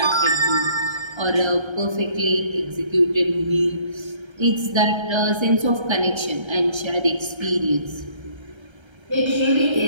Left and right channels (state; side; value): late; left; 1.3 ms